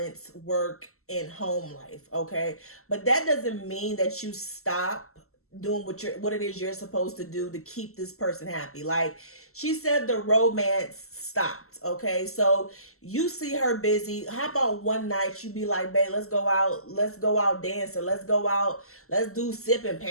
work and home life, okay? But that doesn't mean that you stop doing what it is you're supposed to do to keep this person happy. Like she said, the romance stopped, okay? So you see her busy. How about one night you be like, babe, let's go out dancing, let's do sip and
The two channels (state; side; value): late; right; 0.63 ms